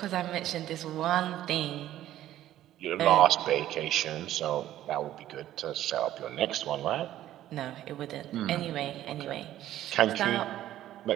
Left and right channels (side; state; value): left; quieter; 13.0 dB